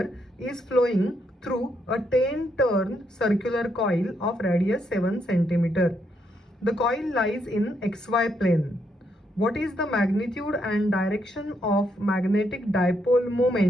is flowing through a 10 turn circular coil of radius 7 centimeter. The coil lies in XY plane. What is the magnitude and direction of magnetic dipole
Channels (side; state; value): both; normal; correlation 0.77